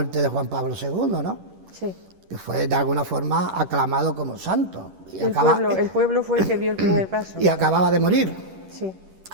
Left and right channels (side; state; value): left; late; 10 ms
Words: de Juan Pablo II, ¿no? Sí. Que fue de alguna forma aclamado como santo. Y el pueblo fue el que dio el primer paso. Y acababa de morir. Sí.